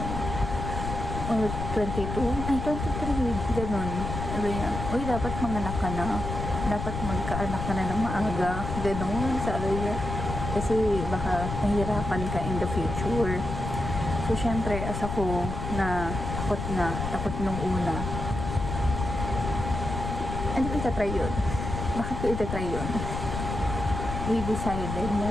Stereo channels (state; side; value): noise; left; rumble, 5 dB below the sound